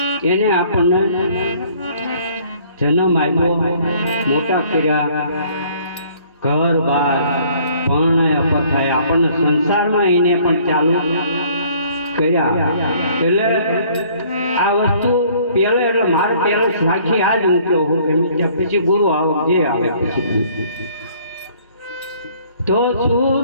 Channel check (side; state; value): both; inverted; correlation -0.58